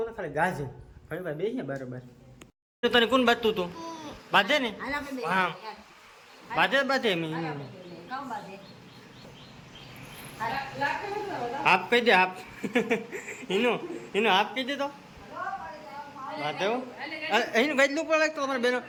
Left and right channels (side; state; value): both; identical; correlation 1.00